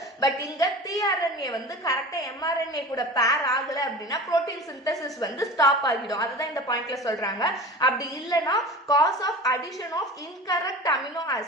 பட் இங்க tRNA வந்து கரெக்டா mRNA கூட பேர் ஆகல அப்படின்னா புரோட்டீன் சிந்தசிஸ் வந்து ஸ்டாப் ஆகிடும். அதுதான் இந்த பாயிண்ட்ல சொல்றாங்க. அப்படி இல்லனா cause of addition of incorrect amino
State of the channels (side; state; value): both; normal; correlation 0.35